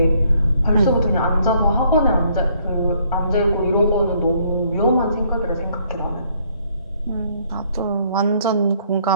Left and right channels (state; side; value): inverted; both; correlation -0.66